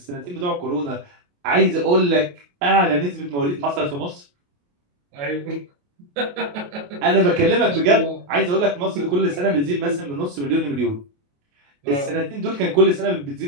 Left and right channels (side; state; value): left; late; 28 ms